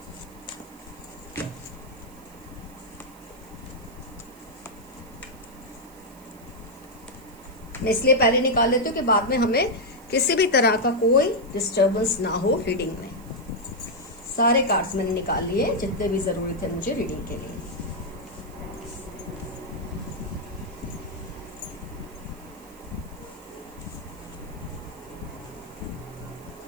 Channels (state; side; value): noise; right; hiss, 24 dB below the sound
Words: मैं इसलिए पहले निकाल लेती हूँ कि बाद में हमें किसी भी तरह का कोई डिस्टर्बेंस ना हो रीडिंग में। सारे कार्ड्स मैंने निकाल लिए जितने भी जरूरी थे मुझे रीडिंग के लिए।